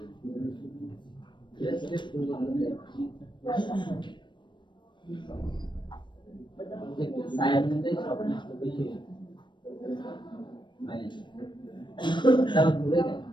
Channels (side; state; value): right; late; 0.22 ms